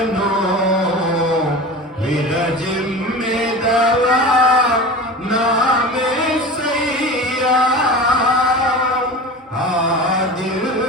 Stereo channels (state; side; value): normal; both; correlation 0.33